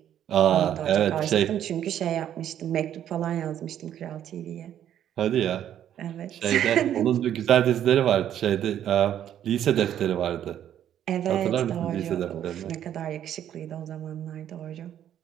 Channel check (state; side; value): quieter; left; 10.6 dB